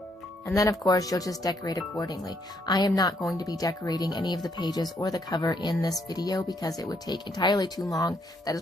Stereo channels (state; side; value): normal; both; correlation 0.72